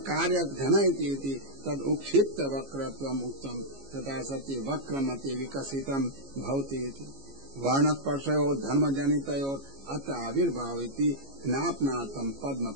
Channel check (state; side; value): late; left; 15 ms